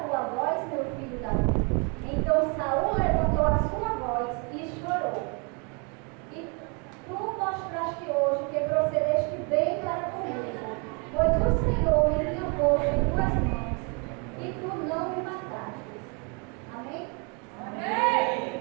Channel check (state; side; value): quieter; left; 34.2 dB